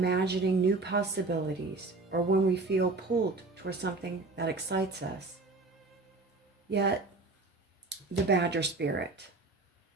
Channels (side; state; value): left; quieter; 3.5 dB